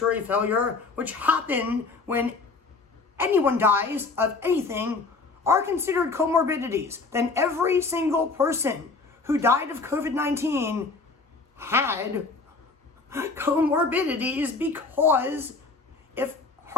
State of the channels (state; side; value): quieter; right; 4.0 dB